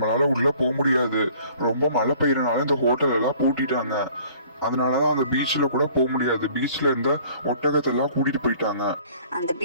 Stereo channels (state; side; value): inverted; both; correlation -0.54